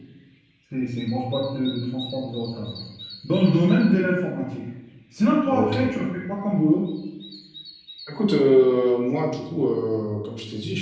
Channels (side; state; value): both; identical; correlation 1.00